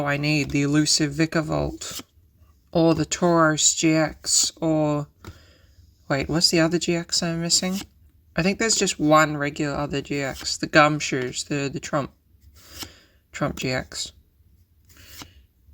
I need, the elusive Vikavolt, or the Tauros GX, or... Wait, what's the other GX I'm missing? I think there's just one regular other GX, the Gumshoes, the Trump GX.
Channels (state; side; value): identical; both; correlation 1.00